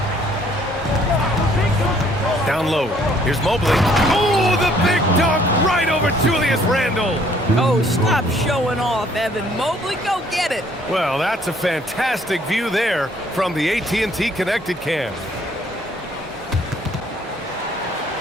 Down low. Here's Mobley. Oh, the big dunk right over Julius Randall. Oh, stop showing off, Evan. Mobley, go get it. Well, that's a fantastic view there from the AT&T Connected Cam.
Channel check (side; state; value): both; normal; correlation 0.62